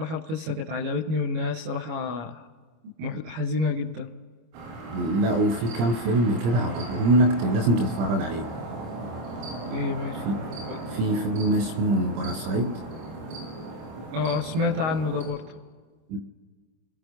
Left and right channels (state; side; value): late; left; 26 ms